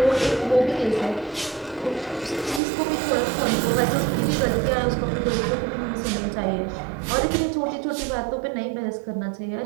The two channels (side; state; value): left; drops out; at 2.6 s